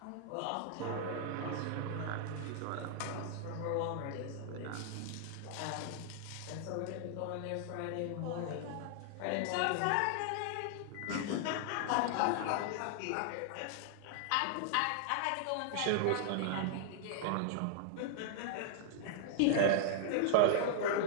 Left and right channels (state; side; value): different; both; correlation -0.01